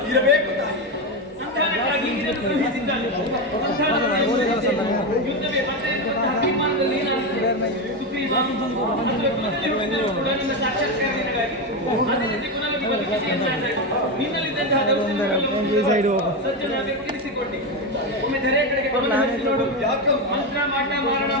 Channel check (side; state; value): both; normal; correlation 0.13